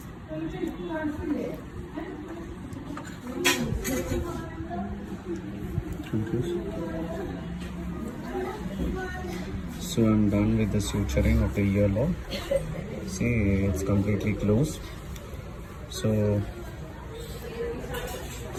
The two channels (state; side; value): identical; both; correlation 1.00